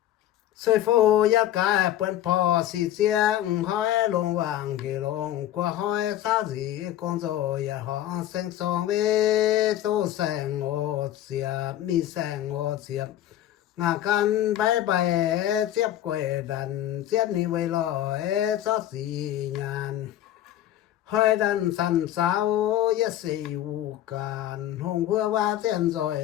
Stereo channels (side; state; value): right; quieter; 12.5 dB